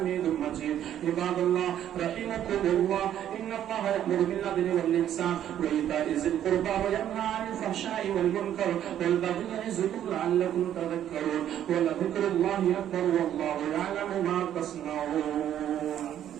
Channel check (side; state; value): left; quieter; 10.8 dB